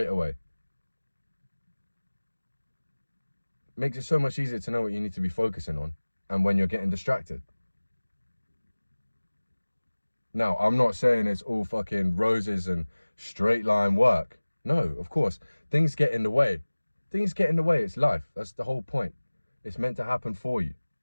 away. Makes it so much easier to know what you need to be focusing on and when you're getting distracted. Now, I'm not saying it's all fucking roses and straight line work. No, of course, things get in the way. Things get in the way, it's life. That's the whole point. It's meant to happen for you.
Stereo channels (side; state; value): both; inverted; correlation -1.00